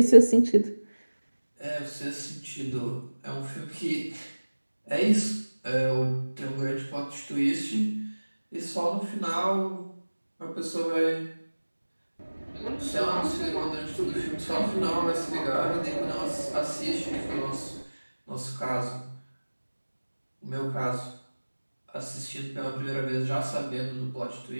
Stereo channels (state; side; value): inverted; both; correlation -1.00